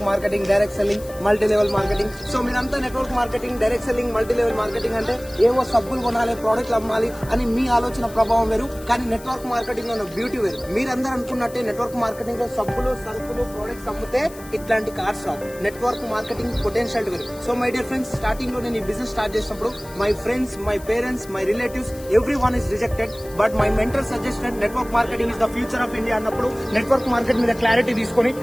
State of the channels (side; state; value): left; noise; hiss, 19 dB below the sound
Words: marketing, direct selling, multi level marketing. So మీరంతా network marketing, direct selling, multi level marketing అంటే ఏవో సబ్బులు కొనాలి, ప్రోడక్ట్లు అమ్మాలి అని మీ ఆలోచన ప్రభావం వేరు. కానీ నెట్వర్క్ మార్కెటింగ్ లో బ్యూటీ వేరు. మీరందరూ అనుకున్నట్టే నెట్వర్క్ మార్కెటింగ్ లో సబ్బులు, సరుకులు, ప్రోడక్ట్స్ అమ్మితే ఇట్లాంటి కార్డ్స్ రావు. నెట్వర్క్ మార్కెటింగ్ పొటెన్షియల్ వేరు. So my dear friends, starting లో నేను ఈ బిజినెస్ స్టార్ట్ చేసినప్పుడు my friends, my parents, my relatives, every one is rejected. But my mentor suggested network marketing is the future of India అన్నప్పుడు నెట్వర్క్ మార్కెట్ మీద క్లారిటీ తీసుకొని